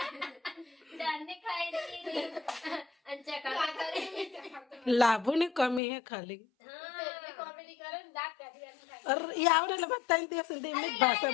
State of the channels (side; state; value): right; drops out; at 5.8 s